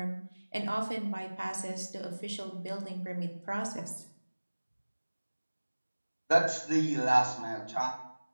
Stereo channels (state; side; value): inverted; both; correlation -1.00